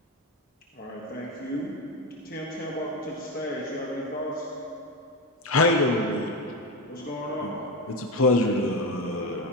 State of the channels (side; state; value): both; normal; correlation 0.15